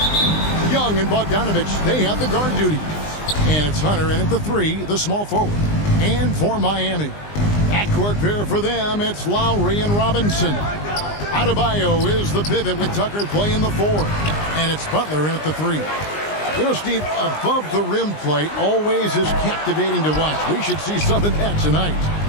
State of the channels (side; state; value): right; late; 20 ms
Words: Young and Bogdanovich, they have the guard duty. And it's Hunter in at the 3, the small forward. And for Miami, backcourt pair for them, it's Lowry and Robinson. Adebayo is the pivot with Tucker playing the 4. And it's Butler in at the 3. You know, Steve, above the rim play always is captivating to watch. We should see some of that tonight.